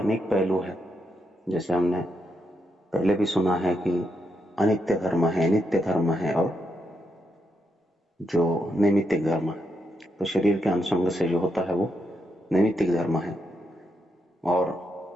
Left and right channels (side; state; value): both; normal; correlation 0.82